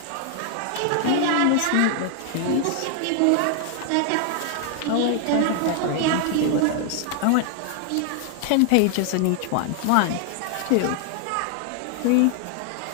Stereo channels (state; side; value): different; both; correlation 0.00